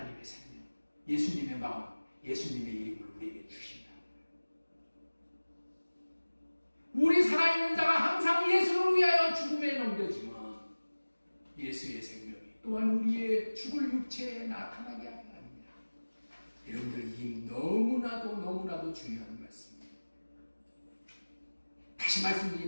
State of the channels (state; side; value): inverted; both; correlation -1.00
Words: 생명, 예수님의 마음, 예수님의 이름을 우리에게 주신다. 우리 살아있는 자가 항상 예수를 위하여 죽음에 넘겨지면 예수의 생명이 또한 우리의 죽을 육체에 나타나게 하는 겁니다. 여러분들, 이 너무나도 중요한 말씀입니다. 다시